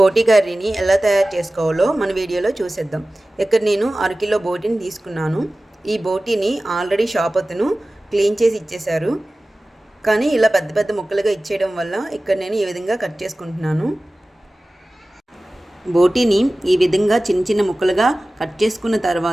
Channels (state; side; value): normal; both; correlation 0.97